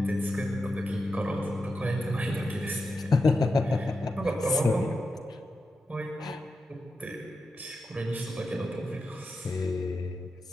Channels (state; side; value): normal; both; correlation 0.89